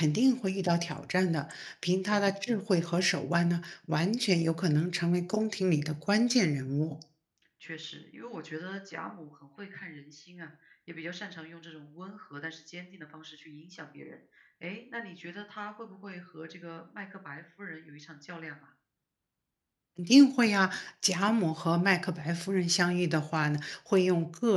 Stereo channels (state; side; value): identical; both; correlation 1.00